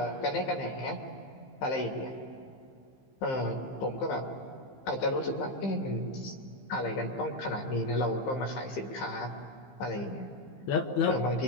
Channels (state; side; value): late; right; 15 ms